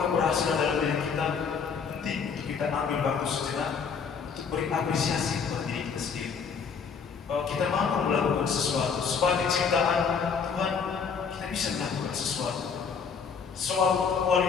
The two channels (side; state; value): right; quieter; 6.1 dB